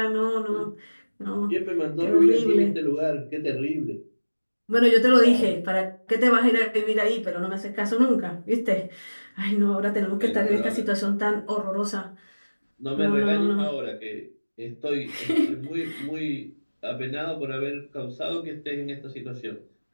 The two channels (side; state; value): both; inverted; correlation -1.00